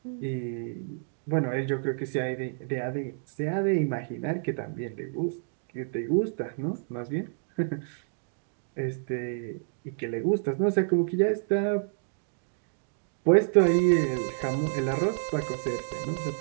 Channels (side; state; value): left; silent; digital silence